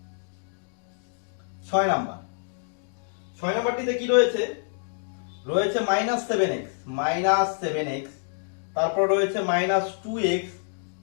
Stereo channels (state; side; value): silent; right; digital silence